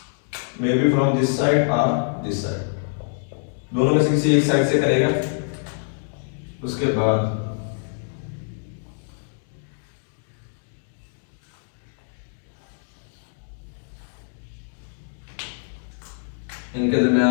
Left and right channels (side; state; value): right; silent; digital silence